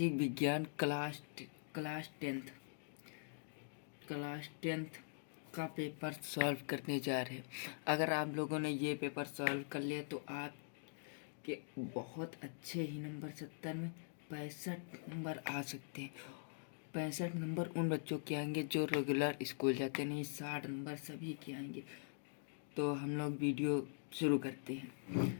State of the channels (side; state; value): right; silent; digital silence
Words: विज्ञान क्लास टेंथ का पेपर सॉल्व करने जा रहे हैं। अगर आप लोगों ने ये पेपर सॉल्व कर लिया तो आपके बहुत अच्छे ही नंबर 70 में 65 नंबर आ सकते हैं। 65 नंबर उन बच्चों के आएंगे जो रेगुलर स्कूल जाते नहीं, 60 नंबर सभी के आएंगे। तो हम लोग वीडियो शुरू करते हैं।